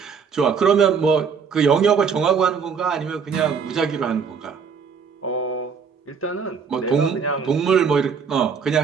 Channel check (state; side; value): quieter; left; 6.1 dB